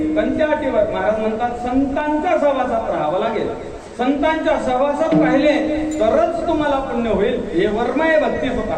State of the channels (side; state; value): both; identical; correlation 1.00